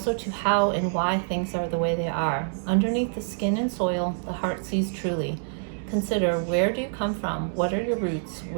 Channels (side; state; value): left; silent; digital silence